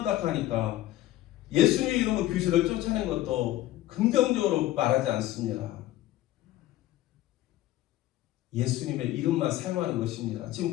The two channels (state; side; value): quieter; right; 15.0 dB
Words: 예수님의 이름으로 귀신을 쫓아낸 것도 긍정적으로 말하지 않습니다. 예수님의 이름만 사용하는 것입니다. 지금